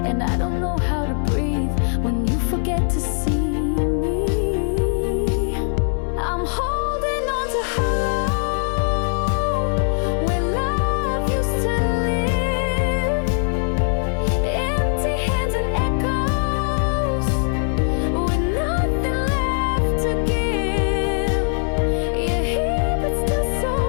and I don't know how to breathe when you forget to see me. I'm holding on to hollow, where love used to live. Empty hands and echoes, with nothing left to give. You're here but still so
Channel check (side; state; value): right; silent; 65 dB below the other